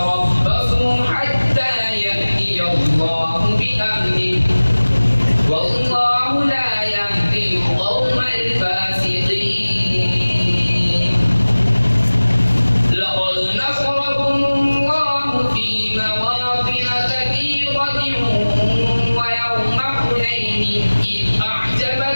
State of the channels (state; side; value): inverted; both; correlation -1.00